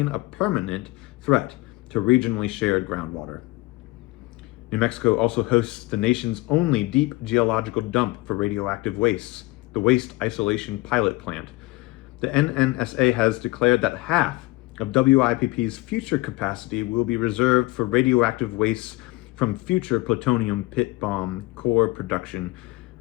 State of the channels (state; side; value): quieter; right; 21.4 dB